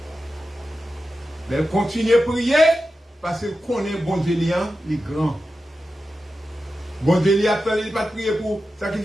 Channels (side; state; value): both; normal; correlation 0.92